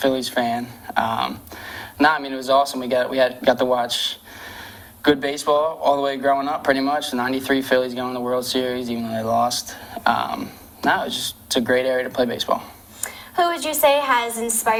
fan. It was awesome. We got to watch good baseball all the way growing up, pretty much. The '93 Phillies going to the World Series, even though they lost. It's a great area to play baseball. Who would you say has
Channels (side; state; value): both; identical; correlation 1.00